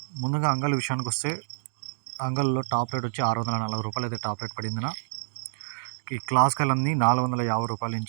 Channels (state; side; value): silent; left; digital silence